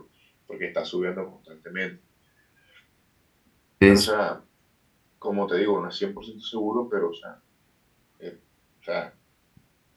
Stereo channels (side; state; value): both; identical; correlation 1.00